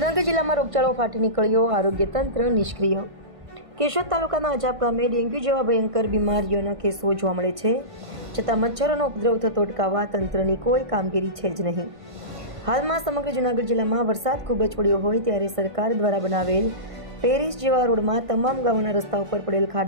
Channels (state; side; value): late; left; 1.5 ms